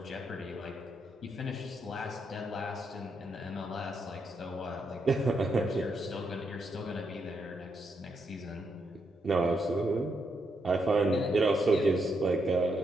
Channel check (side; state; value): both; normal; correlation 0.79